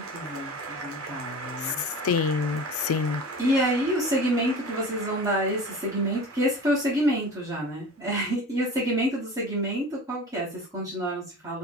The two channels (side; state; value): both; normal; correlation 0.36